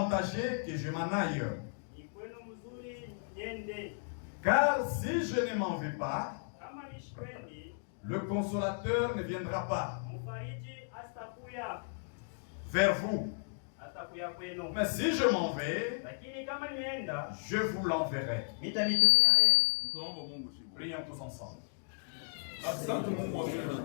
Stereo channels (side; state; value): right; silent; digital silence